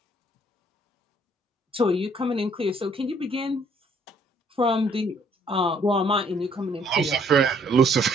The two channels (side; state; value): both; normal; correlation 0.64